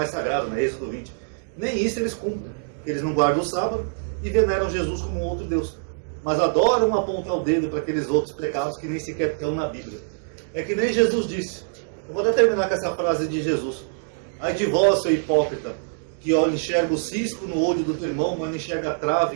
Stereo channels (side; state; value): left; silent; digital silence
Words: sagrado, né? Êxodo 20. Nem isso eles cumprem. Eles não guardam o sábado e veneram Jesus como outro Deus. Mas adoram apontar o dedo para aqueles outros pecados que nem sequer estão na Bíblia. É que nem Jesus disse. Eu vou até terminar com essa frase de Jesus. Ai de vós, seu hipócrita, que enxerga o cisco no olho do teu irmão, mas não enxerga a